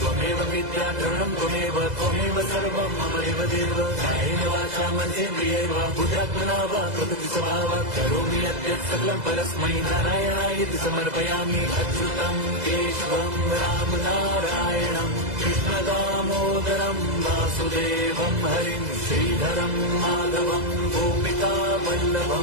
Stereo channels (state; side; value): late; left; 2.0 ms